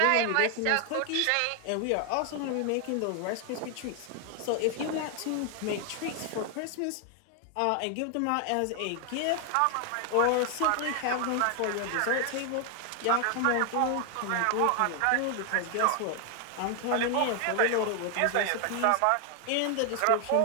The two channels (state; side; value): different; both; correlation 0.00